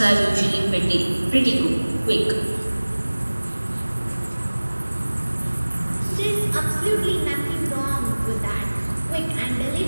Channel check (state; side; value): inverted; both; correlation -1.00